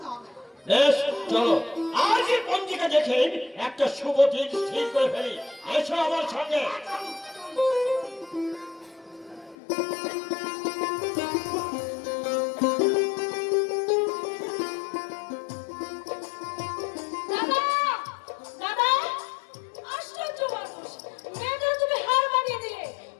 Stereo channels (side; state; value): right; drops out; at 9.6 s